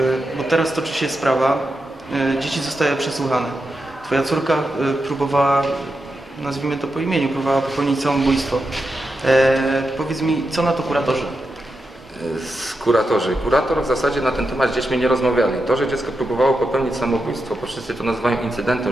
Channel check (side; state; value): both; normal; correlation 0.87